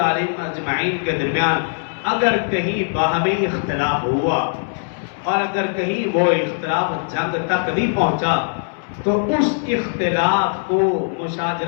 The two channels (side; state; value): right; silent; 65 dB below the other